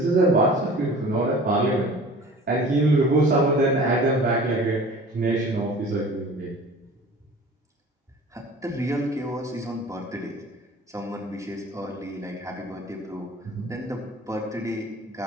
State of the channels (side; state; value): both; normal; correlation 0.44